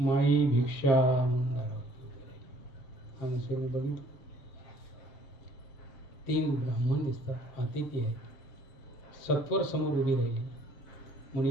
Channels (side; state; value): right; late; 7.5 ms